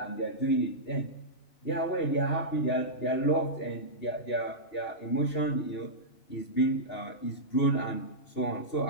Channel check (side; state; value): right; late; 3.0 ms